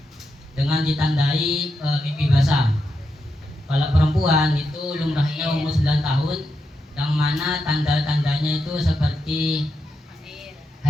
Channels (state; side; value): normal; both; correlation 0.85